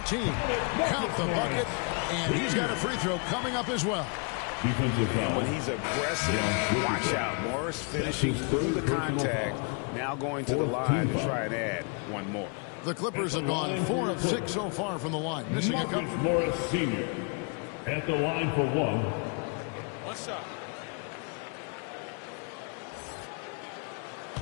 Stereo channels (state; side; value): quieter; right; 37.5 dB